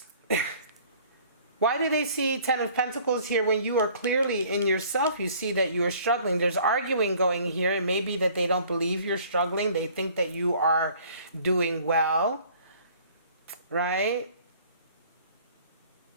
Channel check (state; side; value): inverted; both; correlation -0.54